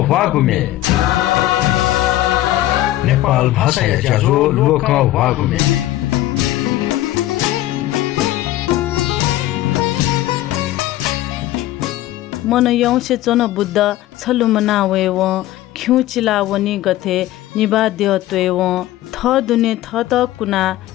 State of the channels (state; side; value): quieter; right; 15.0 dB